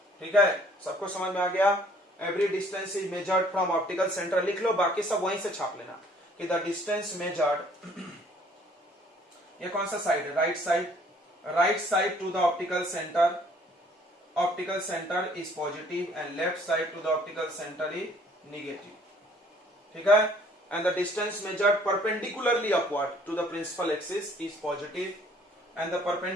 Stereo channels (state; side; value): normal; both; correlation 0.59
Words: ठीक है। सबको समझ में आ गया। Every distance is measured from optical centre लिख लो, बाकी सब वहीं से छाप लेना कि द डिस्टेंस मेजर्ड, ये कौन सा साइड है, right side, right side to the optical centre, optical centre is positive, and left side to the optical centre is negative, ठीक है। And the distance measured perpendicularly upward to the principal axis is positive, and the